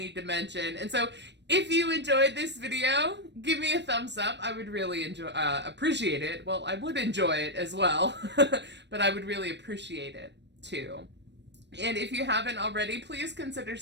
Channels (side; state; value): left; late; 0.51 ms